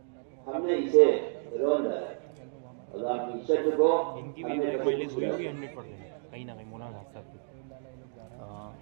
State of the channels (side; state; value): left; silent; digital silence